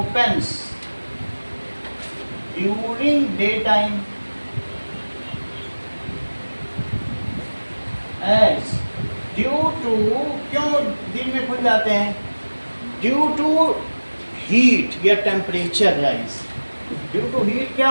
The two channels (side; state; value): both; inverted; correlation -1.00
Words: during daytime as due to, क्यों दिन में खुल जाते हैं? ड्यू टू हीट या temperature rise. Due to heat